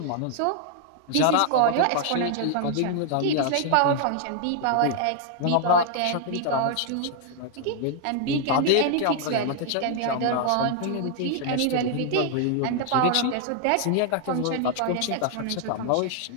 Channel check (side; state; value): both; different; correlation 0.00